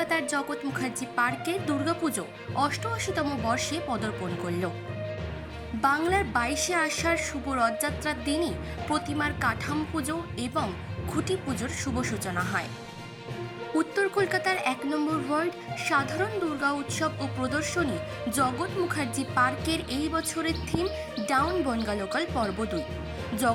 জগৎ মুখার্জি পার্কে দুর্গাপুজো 88তম বর্ষে পদার্পণ করল। বাংলার 22শে আষাঢ় শুভ রথযাত্রার দিনই প্রতিমার কাঠামো পুজো এবং খুঁটি পুজোর শুভ সূচনা হয়। উত্তর কলকাতার 1 নম্বর ওয়ার্ড সাধারণ দুর্গা উৎসব ও প্রদর্শনী জগৎ মুখার্জি পার্কের এই বছরের থিম ডাউন বনগা লোকাল পর্ব 2।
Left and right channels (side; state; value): both; identical; correlation 1.00